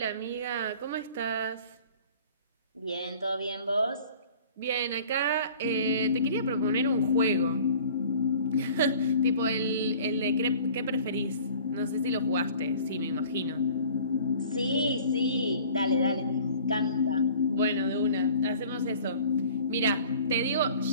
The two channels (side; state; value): both; inverted; correlation -0.48